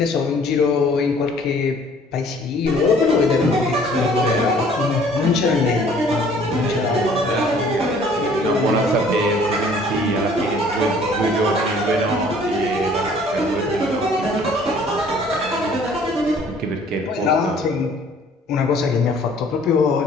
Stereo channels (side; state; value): both; normal; correlation 0.55